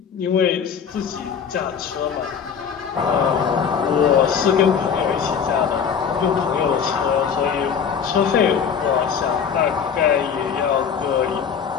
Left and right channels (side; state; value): right; quieter; 7.0 dB